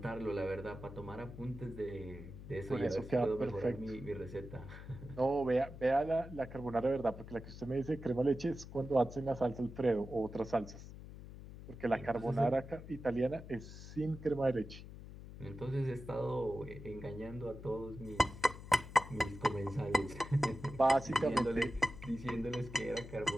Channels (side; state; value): left; noise; hum, 13 dB below the sound